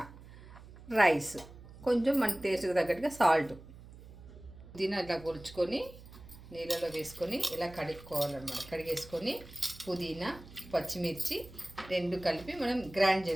రైస్, కొంచెం మన టేస్ట్కి తగ్గట్టుగా సాల్ట్. పుదీనా ఇలా కొలుచుకొని నీళ్ళలో వేసుకొని ఇలా కడుక్కోవాలన్నమాట. కడిగేసుకొని పుదీనా, పచ్చిమిర్చి రెండు కలిపి మనం గ్రైండ్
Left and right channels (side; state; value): right; noise; hum, 18 dB below the sound